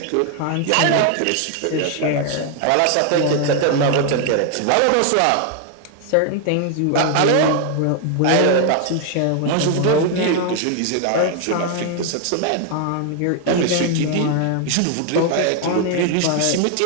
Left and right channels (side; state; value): both; different; correlation 0.00